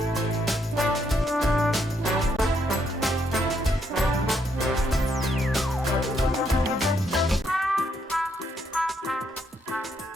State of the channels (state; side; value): normal; both; correlation 0.74